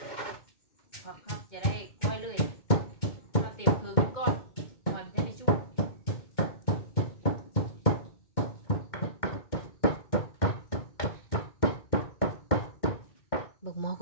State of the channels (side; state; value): right; late; 2.2 ms